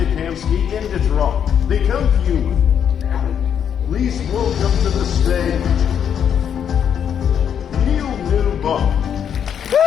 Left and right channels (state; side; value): quieter; right; 8.4 dB